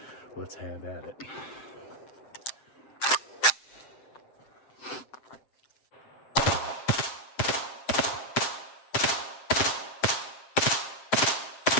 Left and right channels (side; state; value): right; late; 7.7 ms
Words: let's have at it.